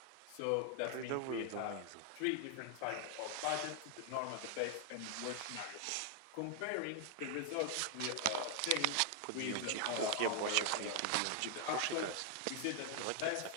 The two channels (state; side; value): different; both; correlation 0.00